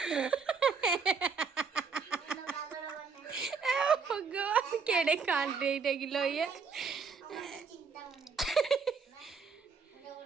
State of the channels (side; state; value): left; quieter; 5.3 dB